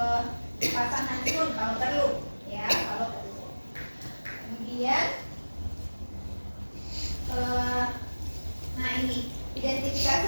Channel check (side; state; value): both; inverted; correlation -1.00